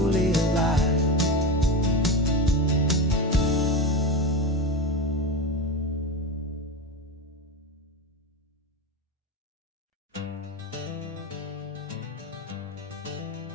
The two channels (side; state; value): both; normal; correlation 0.20